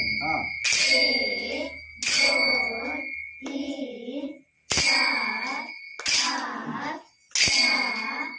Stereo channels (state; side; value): identical; both; correlation 1.00